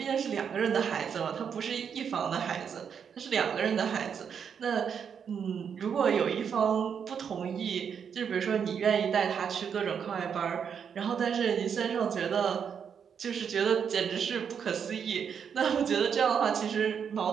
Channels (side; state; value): left; quieter; 7.3 dB